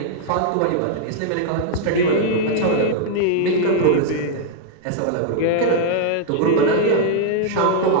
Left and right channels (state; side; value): different; both; correlation -0.01